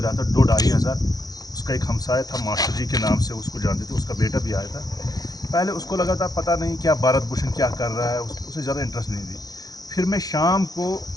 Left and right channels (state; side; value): late; right; 0.18 ms